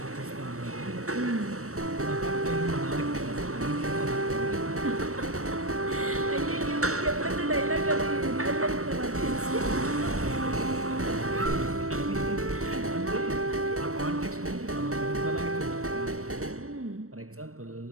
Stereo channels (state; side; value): late; left; 0.64 ms